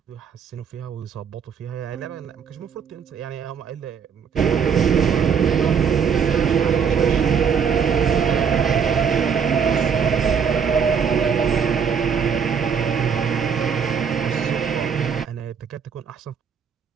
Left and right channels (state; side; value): quieter; left; 6.9 dB